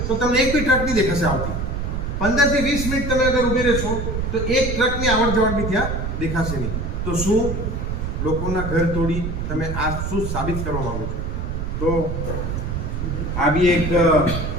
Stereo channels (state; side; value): noise; right; rumble, 3 dB below the sound